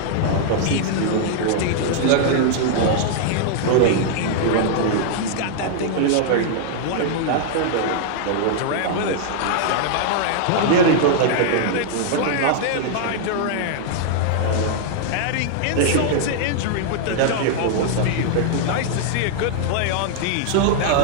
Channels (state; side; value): different; both; correlation -0.01